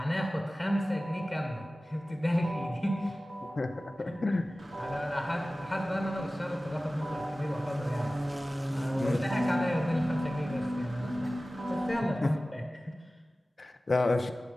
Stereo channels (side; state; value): both; normal; correlation 0.97